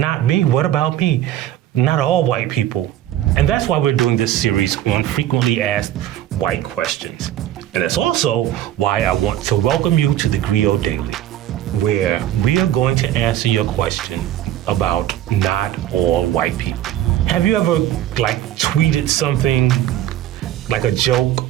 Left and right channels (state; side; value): quieter; left; 12.6 dB